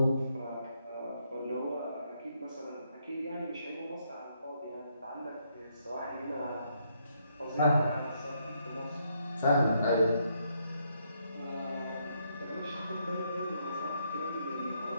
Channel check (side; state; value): both; inverted; correlation -0.75